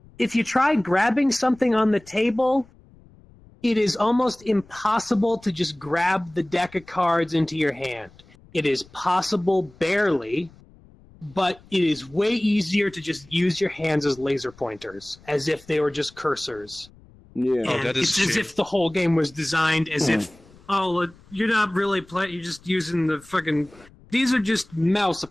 if you try grabbing something on the table, it is almost impossible to just grab the deck of cards into your hand. It is possible barely, but it is way easier to just use your hands as laser pointers, as if they were just cursors. Yeah, and it's as if the whole game was designed as if, you're not really playing, you're just using the fucking... These are just mouse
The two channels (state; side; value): noise; left; rumble, 26 dB below the sound